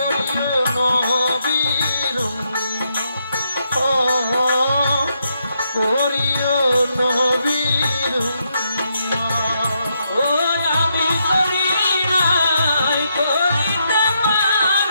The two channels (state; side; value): inverted; both; correlation -0.79